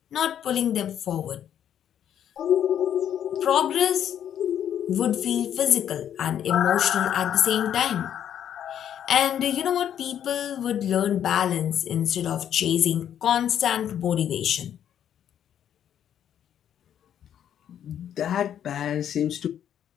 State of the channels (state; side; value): quieter; right; 9.8 dB